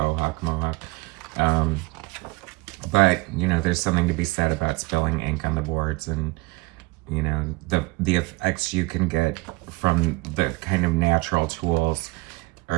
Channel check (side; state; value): left; quieter; 23.6 dB